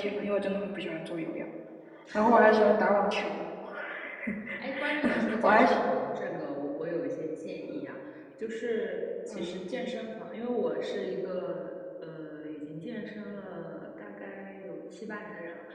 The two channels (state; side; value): identical; both; correlation 1.00